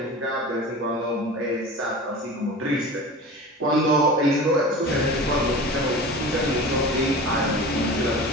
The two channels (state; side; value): normal; both; correlation 0.35